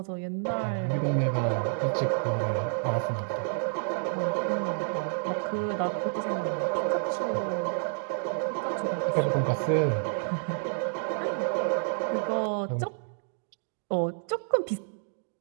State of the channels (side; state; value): left; silent; digital silence